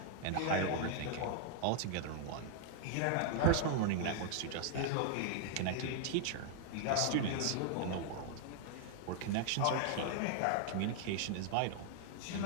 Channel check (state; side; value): different; both; correlation 0.00